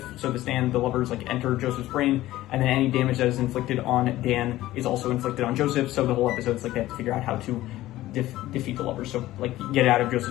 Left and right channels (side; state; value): right; quieter; 15.8 dB